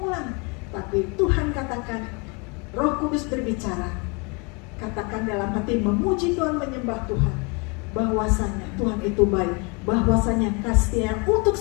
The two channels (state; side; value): quieter; right; 31.1 dB